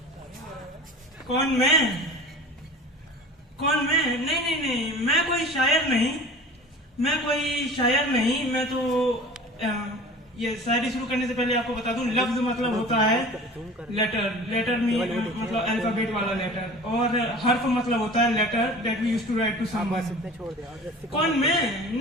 कौन मैं? नहीं, मैं कोई शायर नहीं। मैं तो ये शायरी शुरू करने से पहले आपको बता दूं, लफ्ज मतलब होता है लेटर में मतलब अल्फाबेट वाला लेटर, और हर्फ मतलब होता है letter that we used to write to someone. कौन मैं?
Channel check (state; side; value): normal; both; correlation 0.40